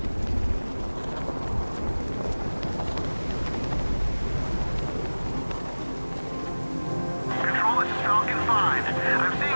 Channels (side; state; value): both; inverted; correlation -1.00